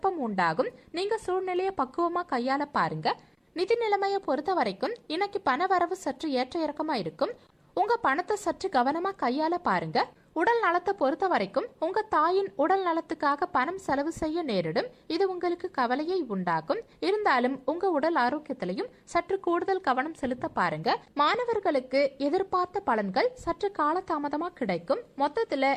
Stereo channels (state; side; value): identical; both; correlation 1.00